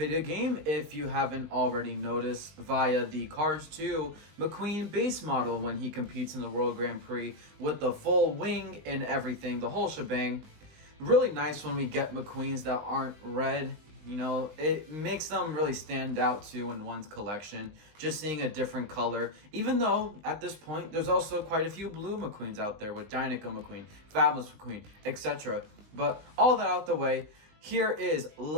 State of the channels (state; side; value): late; left; 19 ms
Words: game, if you haven't already noticed, via the Cars 2 McQueen base model when he competes in the World Grand Prix with the full wing and everything, the whole shebang. Really nice when we get McQueens that aren't red. You know, it makes them really stand out too in one's collection, just seeing a different color. Even though, at this point, there's also quite a few blue McQueens out there with Dinoco McQueen, Fabulous McQueen, etc. But all that out the way, here is